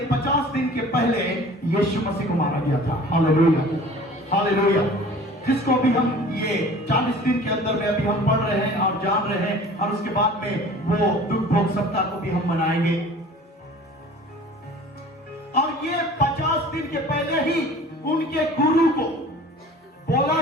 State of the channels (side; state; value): both; normal; correlation 0.45